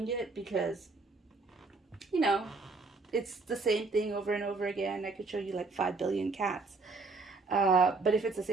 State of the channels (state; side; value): quieter; left; 3.8 dB